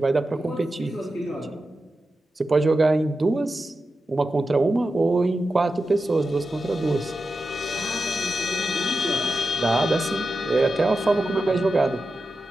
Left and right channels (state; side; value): normal; both; correlation 0.91